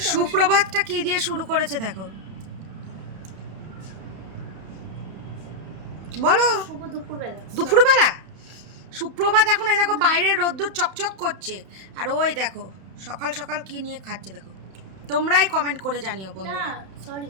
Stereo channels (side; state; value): left; late; 31 ms